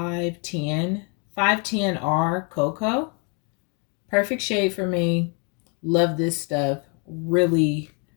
510R Cocoa. Perfect shade for me. Love this stuff. Really,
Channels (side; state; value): right; quieter; 35.8 dB